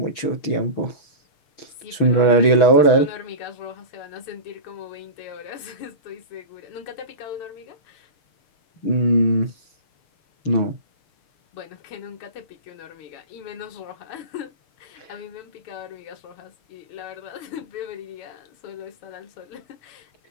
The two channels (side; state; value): right; late; 6.1 ms